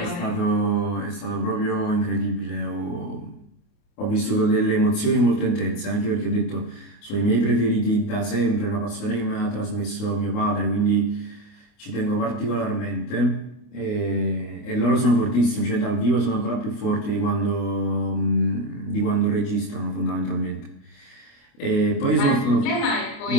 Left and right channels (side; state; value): right; late; 28 ms